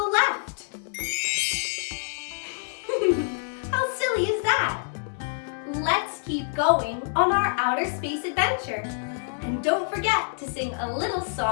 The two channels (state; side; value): silent; right; digital silence